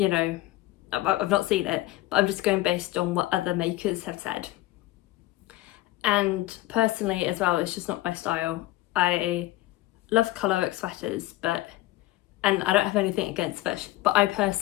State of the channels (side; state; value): right; quieter; 17.4 dB